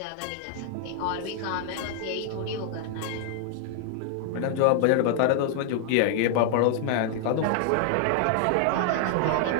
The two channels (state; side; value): different; both; correlation 0.00